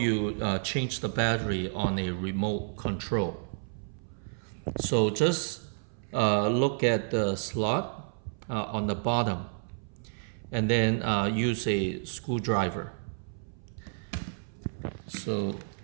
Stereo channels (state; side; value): silent; left; 57 dB below the other